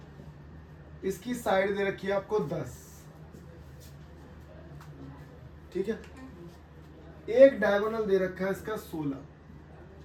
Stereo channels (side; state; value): both; identical; correlation 1.00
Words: इसकी साइड दे रखी है आपको 10, ठीक है। एक डायगोनल दे रखा है इसका 16,